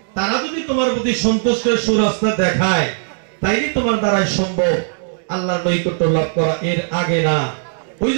তারা যদি তোমার প্রতি সন্তুষ্টের সুরাস্তা দেখায়, তাইলে তোমার দ্বারাই সম্ভব আল্লাহর নৈকট্য লাভ করা, এর আগে না। ওই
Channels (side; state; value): left; silent; digital silence